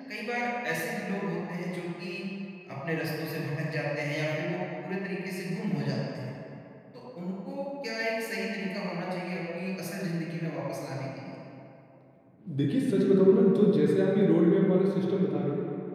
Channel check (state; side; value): identical; both; correlation 1.00